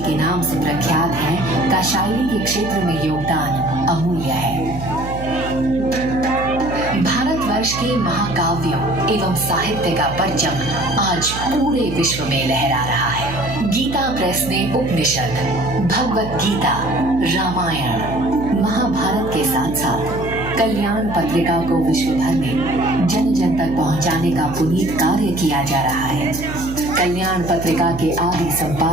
नाम से प्रख्यात हैं, का शायरी के क्षेत्र में योगदान अमूल्य है। भारतवर्ष के महाकाव्यों एवं साहित्य का परचम आज पूरे विश्व में लहरा रहा है। गीता प्रेस ने उपनिषद, भगवत गीता, रामायण, महाभारत के साथ साथ कल्याण पत्रिका को विश्व भर में जन जन तक पहुंचाने का पुनीत कार्य किया जा रहा है। कल्याण पत्रिका के आदि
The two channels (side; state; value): right; noise; hum, 9 dB below the sound